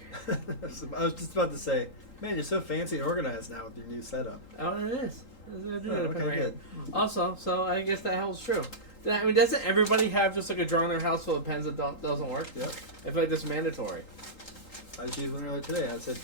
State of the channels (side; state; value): right; late; 3.8 ms